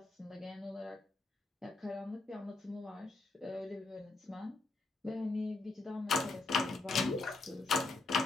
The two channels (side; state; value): right; quieter; 3.3 dB